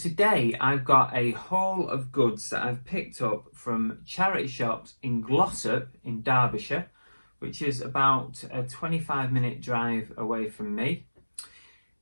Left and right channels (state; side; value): inverted; both; correlation -1.00